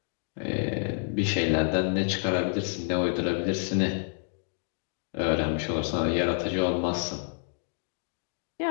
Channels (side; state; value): right; silent; digital silence